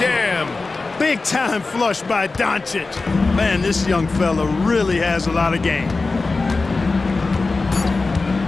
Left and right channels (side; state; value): right; quieter; 3.7 dB